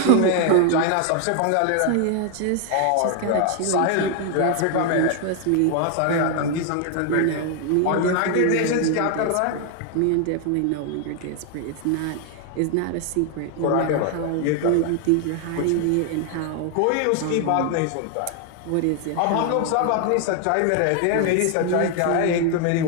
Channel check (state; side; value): different; both; correlation 0.00